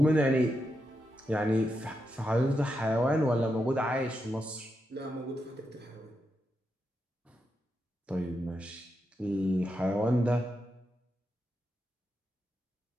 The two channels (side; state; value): both; normal; correlation 0.85